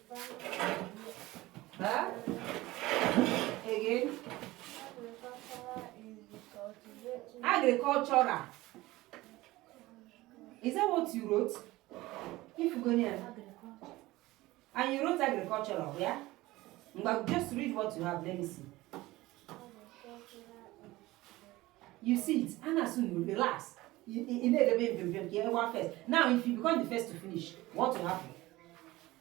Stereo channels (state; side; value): quieter; left; 18.7 dB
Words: Huh? Again? Agricultural. Is that what you wrote? If you go near. And you wrote agricultural, yeah? But just read what you have. Let me see. You see it. And as soon you relax. You first. Now, if you become the first to finish, what will happen?